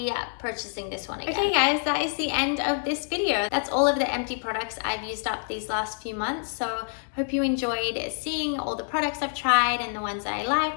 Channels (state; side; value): silent; right; 60 dB below the other